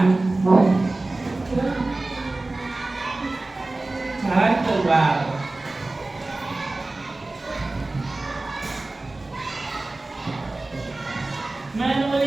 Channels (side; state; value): left; quieter; 3.0 dB